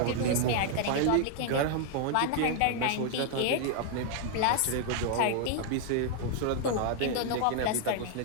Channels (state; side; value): different; both; correlation 0.00